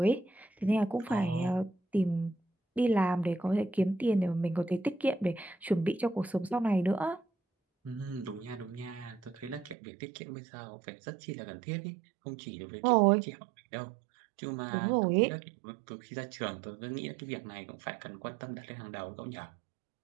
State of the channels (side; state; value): left; drops out; at 9.8 s